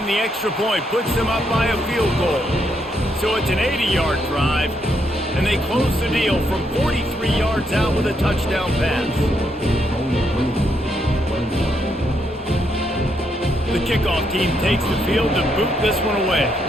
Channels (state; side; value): normal; both; correlation 0.77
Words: the extra point puts them up by a field goal. So it's an 80-yard drive, and they close the deal from 43 yards out with a touchdown pass. The kickoff team takes the field to boot this one away.